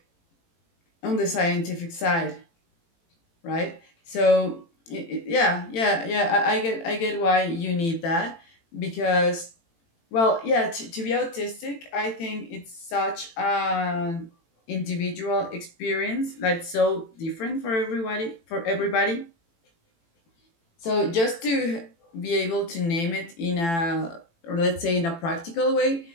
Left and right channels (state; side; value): late; right; 18 ms